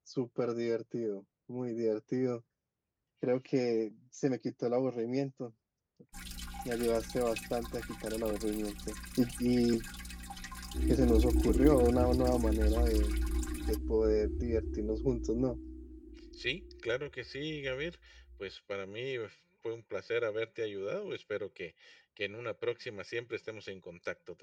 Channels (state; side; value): identical; both; correlation 1.00